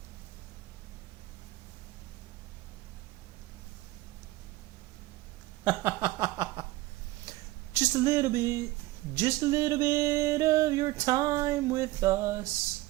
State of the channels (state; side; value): quieter; left; 18.6 dB